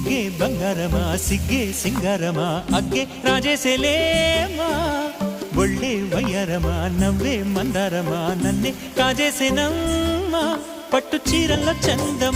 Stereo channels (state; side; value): identical; both; correlation 1.00